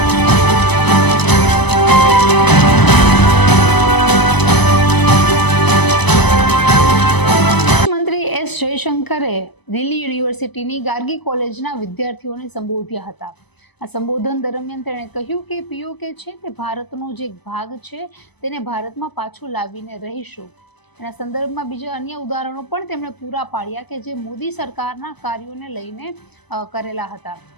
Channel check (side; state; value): right; late; 0.99 ms